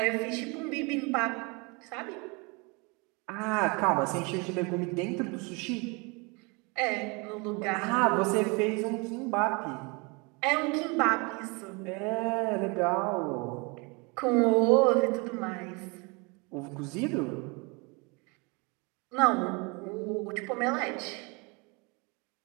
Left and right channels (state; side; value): quieter; left; 29.3 dB